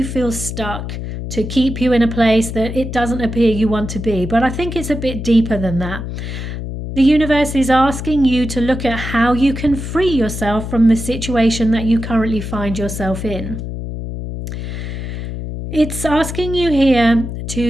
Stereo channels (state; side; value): noise; left; hum, 6 dB below the sound